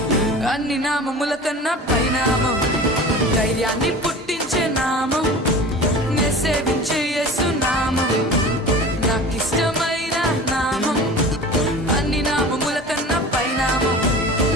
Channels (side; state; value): both; normal; correlation 0.38